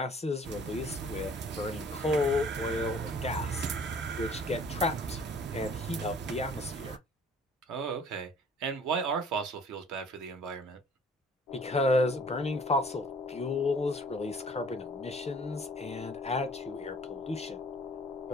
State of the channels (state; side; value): normal; both; correlation 0.53